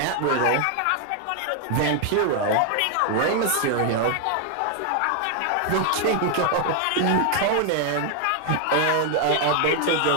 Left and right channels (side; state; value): both; different; correlation 0.00